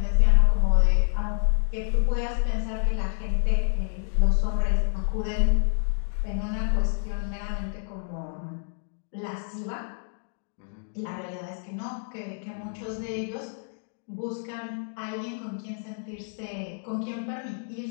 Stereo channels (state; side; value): silent; right; digital silence